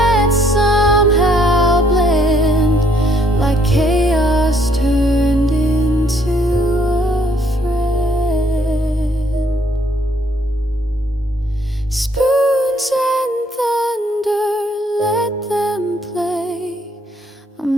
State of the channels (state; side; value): normal; both; correlation 0.67